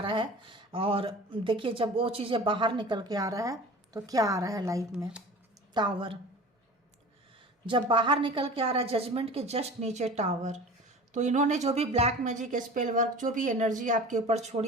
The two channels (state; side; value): normal; both; correlation 0.39